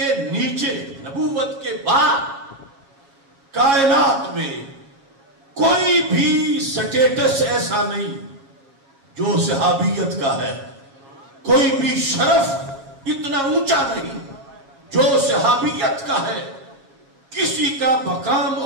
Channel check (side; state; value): left; late; 7.3 ms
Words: نیچے، نبوت کے بعد کائنات میں کوئی بھی سٹیٹس ایسا نہیں جو صحابیت کا ہے. کوئی بھی شرف اتنا اونچا نہیں جو صحابیت کا ہے. کسی کا مقام